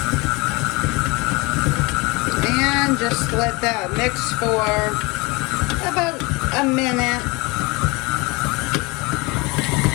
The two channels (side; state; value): right; quieter; 26.0 dB